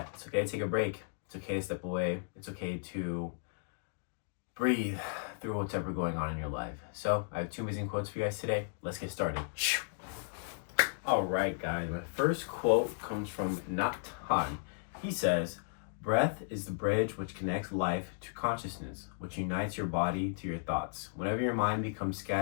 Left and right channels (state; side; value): silent; right; digital silence